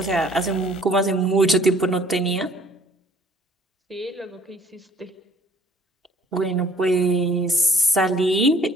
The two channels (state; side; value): normal; both; correlation 0.58